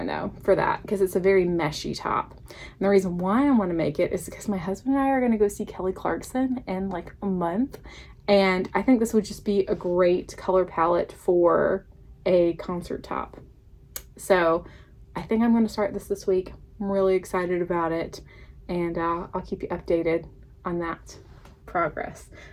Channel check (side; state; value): both; identical; correlation 1.00